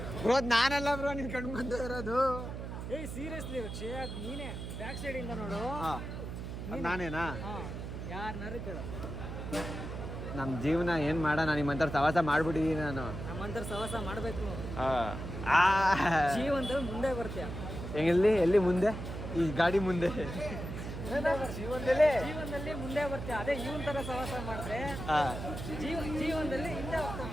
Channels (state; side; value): noise; right; hum, 7 dB below the sound